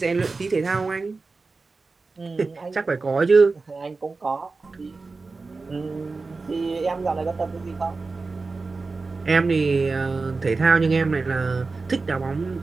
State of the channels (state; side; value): quieter; left; 4.0 dB